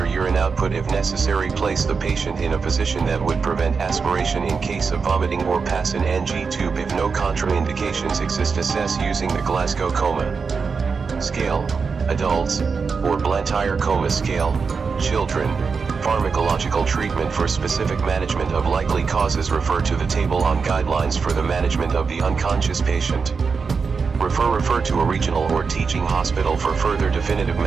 urine output if necessary. Place the patient in a position that would prevent aspiration in case of vomiting, or pass an NG tube if no contraindications exist. Assess using the Glasgow Coma Scale, adults, or Blantyre Coma Scale, children. Pharmacological treatment. For specific management of likely causes, refer to the table on guidelines for the management of the unconscious patient. Refer to a regional or teaching hospital for further definitive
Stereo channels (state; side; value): quieter; left; 5.2 dB